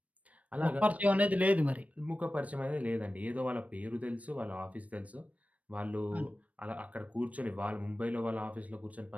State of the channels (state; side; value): late; left; 0.068 ms